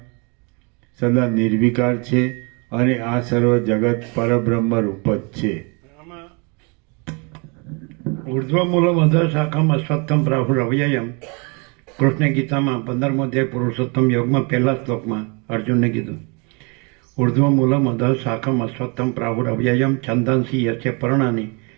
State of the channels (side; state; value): left; quieter; 32.3 dB